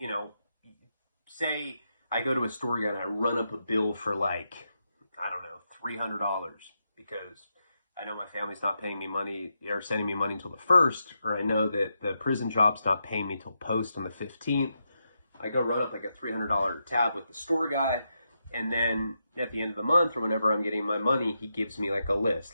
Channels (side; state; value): both; inverted; correlation -0.85